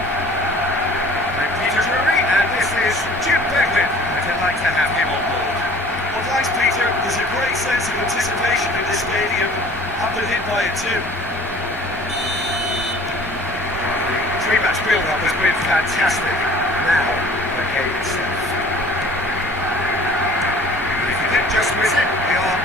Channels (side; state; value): both; normal; correlation 0.49